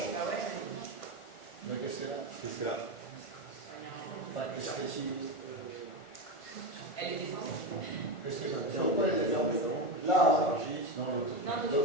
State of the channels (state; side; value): late; right; 1.4 ms